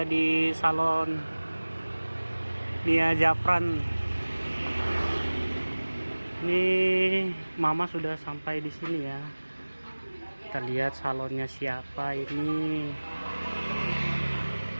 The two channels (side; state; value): both; inverted; correlation -1.00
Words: di salon Nia Zafran. Ini Mama sudah sampai di sini ya. Kita lihat salonnya siapa ini.